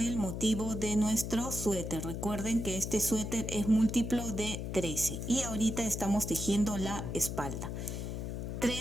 motivo de nuestro suéter. Recuerden que este suéter es múltiplo de 13 y ahorita estamos tejiendo la espalda.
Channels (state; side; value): noise; left; hum, 4 dB below the sound